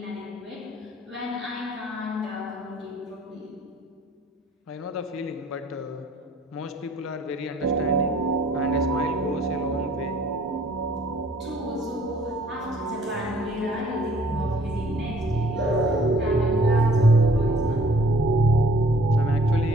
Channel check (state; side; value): normal; both; correlation 0.57